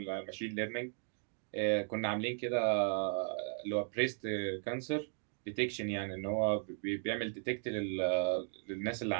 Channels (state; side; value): silent; left; 53 dB below the other